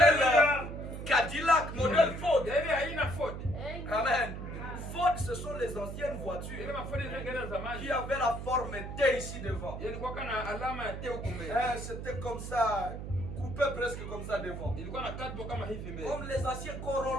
Cadillac, modèle Ford. Amen. Ford, ce sont les anciennes voitures qui avaient la forme T ici devant. C'était comme ça. Coupé presque comme ça devant. Comme les anciens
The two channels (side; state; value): right; noise; hum, 7 dB below the sound